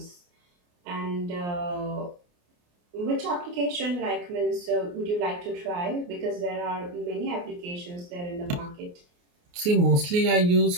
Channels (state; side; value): late; left; 28 ms